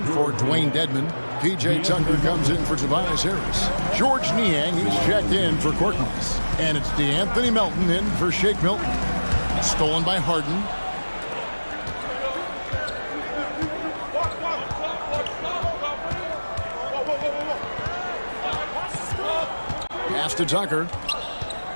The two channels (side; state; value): both; inverted; correlation -1.00